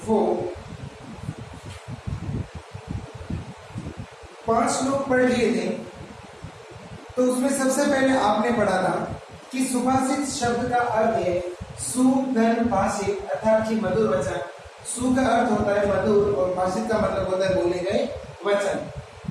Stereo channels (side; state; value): both; identical; correlation 1.00